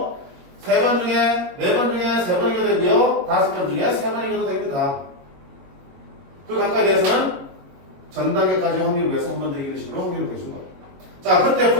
3번 중에, 4번 중에 3번 이겨도 되고요. 5번 중에 3번 이겨도 됩니다. 그 각각에 대해서는 전 단계까지 확률을 위해서 한 번 더 이기는 식으로 확률을 보여준 거. 자, 그때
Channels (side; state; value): left; late; 21 ms